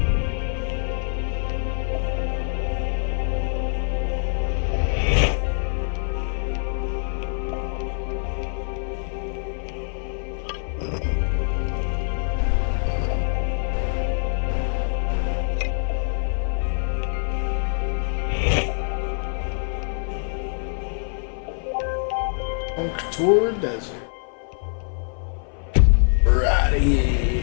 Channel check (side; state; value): right; silent; 56 dB below the other